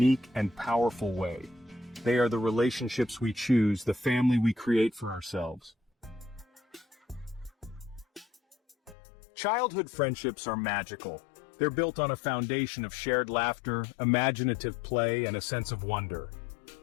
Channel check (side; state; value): right; drops out; at 9.0 s